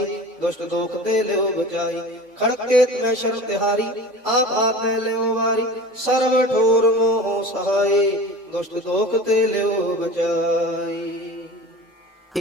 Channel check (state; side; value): normal; both; correlation 0.36